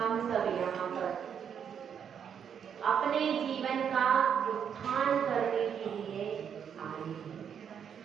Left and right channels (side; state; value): left; quieter; 7.9 dB